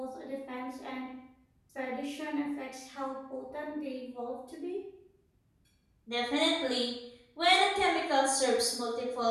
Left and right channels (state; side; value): identical; both; correlation 1.00